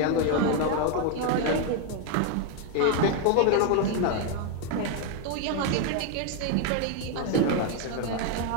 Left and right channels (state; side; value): different; both; correlation 0.00